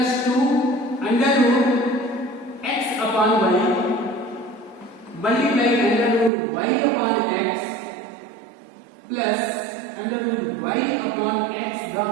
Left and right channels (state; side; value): drops out; left; at 6.3 s